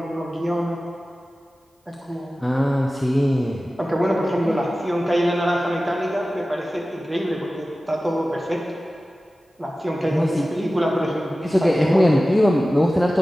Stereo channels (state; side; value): normal; both; correlation 0.96